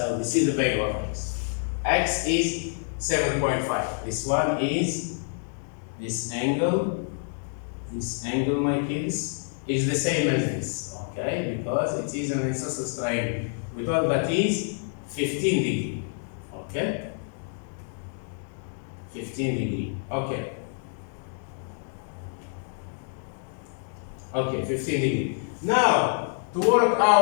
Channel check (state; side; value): silent; right; 60 dB below the other